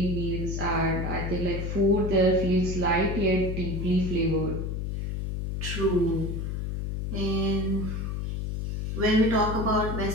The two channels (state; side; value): noise; left; hum, 3 dB below the sound